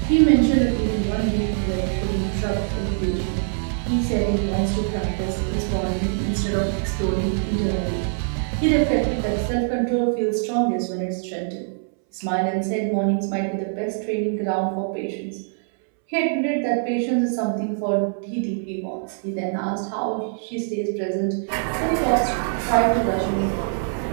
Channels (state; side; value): silent; left; 63 dB below the other